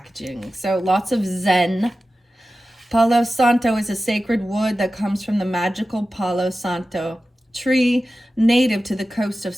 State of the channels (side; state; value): both; normal; correlation 0.94